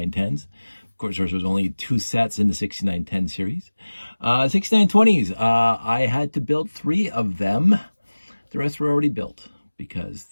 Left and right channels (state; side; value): inverted; both; correlation -1.00